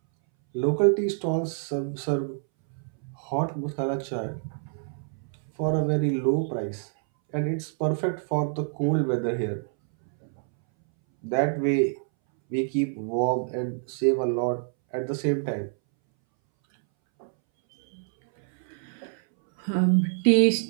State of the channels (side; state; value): left; silent; 60 dB below the other